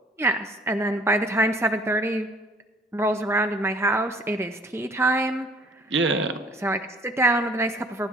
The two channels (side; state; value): both; normal; correlation 0.56